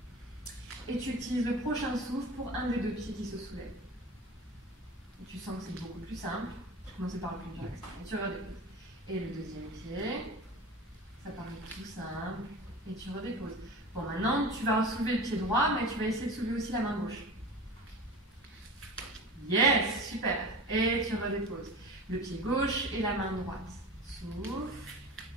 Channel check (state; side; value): normal; both; correlation 0.34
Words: Et tu utilises le prochain souffle pour un des deux pieds qui se soulève. Et tu sens que c'est beaucoup plus simple. Je commence par le plus dur extrême. Et tu redéposes. Et le deuxième pied, ça paraît tout simple. Et tu redéposes. Bon, maintenant, tu vas soulever le pied droit, mais tu vas essayer de soulever aussi la main gauche. Yes, super. Et tu redéposes. Le pied gauche et la main droite. Souffle.